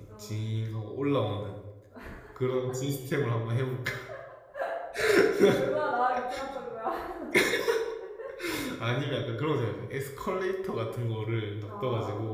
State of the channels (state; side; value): identical; both; correlation 1.00